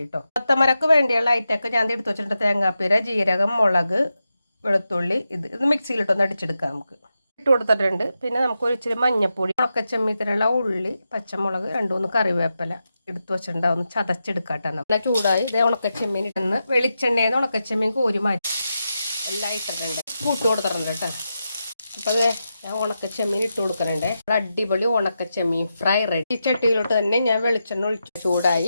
കൊത്തമരക്ക് വേണ്ടിയുള്ള ഐറ്റമൊക്കെ ഞാൻ എടുത്ത് വെച്ചിട്ടുണ്ട്. തേങ്ങാപ്പീര, ജീരകം, മുളക്, വെളുത്തുള്ളി. ഇത് മിക്സിയിലിട്ടൊന്ന് അടിച്ചെടുക്കാം. നമുക്ക് ഇട്ട് കൊടുത്തിട്ടുണ്ട്. പിന്നെ നമുക്ക് ഒരു ഇച്ചിരി മഞ്ഞപ്പൊടി, ഉണക്കച്ചെമ്മീത്തിനുള്ള ഉള്ളി, പച്ചമുളക്, 2-3 കറിവേപ്പില എടുത്ത് വെച്ചിട്ടുണ്ടാവും. ഒന്ന് ചതച്ചെടുക്കാട്ടോ. നല്ല ചൂടായി ഇതേ ഉണക്കച്ചെമ്മീൻ ഇട്ടെന്ന് വെളിച്ചെണ്ണയെന്ന് ഉണക്കച്ചെമ്മീൻ കോരി മാറ്റി എല്ലാം ഇട്ടിട്ടുണ്ട്. കൂട്ട് കൊടുത്തിട്ടുണ്ട് കേട്ടോ. അപ്പോൾ അത് ഞാൻ ഉണക്കച്ചെമ്മീൻ ഇട്ട് കൊടുക്കുന്നുണ്ട്. അടിപൊളി ഉണക്കച്ചെമ്മീൻ ഫ്രൈ റെഡി. ഈ ചട്ടിയിലോട്ട് തന്നെ ഞാൻ വെളിച്ചെണ്ണ ഒഴിച്ചു.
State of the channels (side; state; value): both; inverted; correlation -0.88